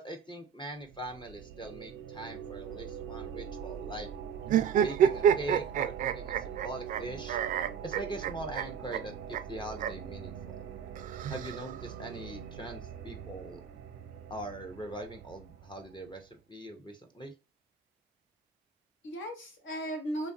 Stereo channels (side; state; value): left; quieter; 6.9 dB